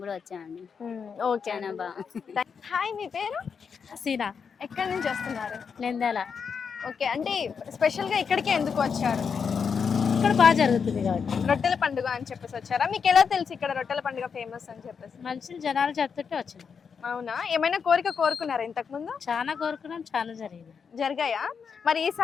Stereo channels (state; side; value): quieter; right; 6.2 dB